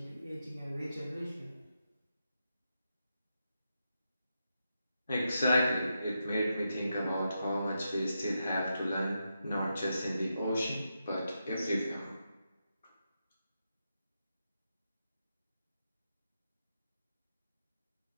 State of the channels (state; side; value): inverted; both; correlation -0.86